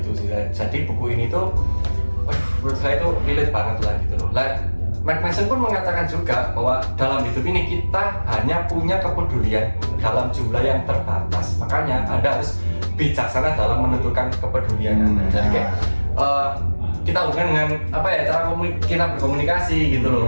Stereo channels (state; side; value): inverted; both; correlation -1.00